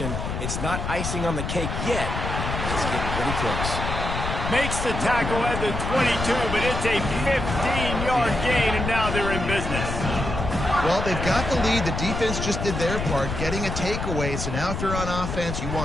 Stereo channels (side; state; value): left; noise; rumble, 4 dB below the sound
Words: It's not icing on the cake yet, but it's getting pretty close. Makes the tackle at the 22, but it's a 15-yard gain, and now they're in business. Well, they've got the lead. The defense just did their part, getting a takeaway. So now if you're on offense, you